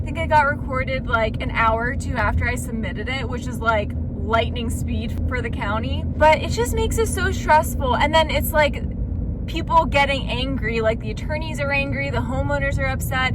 it got recorded like an hour or 2 after I submitted it, which is like lightning speed for the county. But it just makes it so stressful. And then it's like people getting angry, like the attorneys are angry, the homeowners are upset.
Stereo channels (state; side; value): identical; both; correlation 1.00